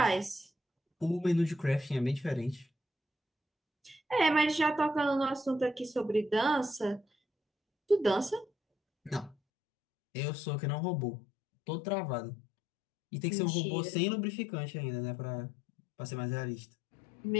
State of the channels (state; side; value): drops out; right; at 9.3 s